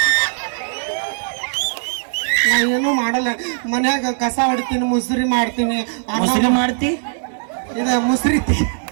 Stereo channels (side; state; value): left; silent; digital silence